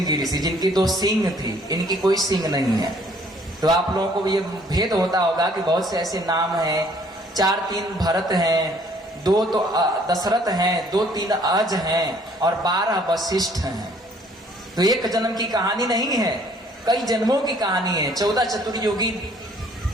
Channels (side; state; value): both; normal; correlation 0.60